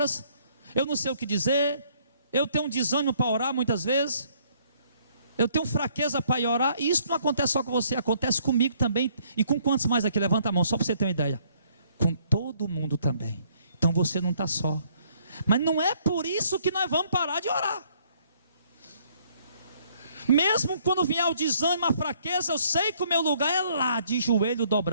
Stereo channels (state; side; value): inverted; both; correlation -0.65